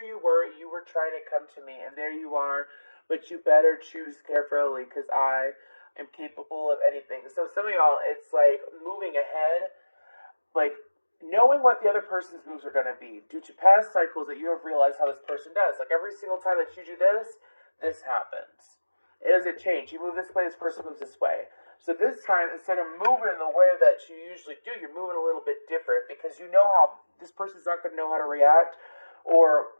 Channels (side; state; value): both; inverted; correlation -1.00